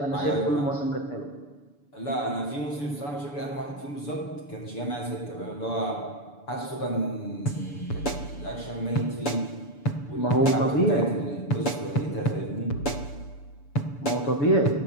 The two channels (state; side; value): late; right; 6.9 ms